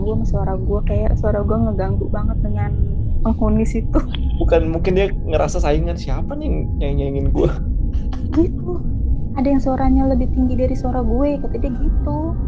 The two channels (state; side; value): identical; both; correlation 1.00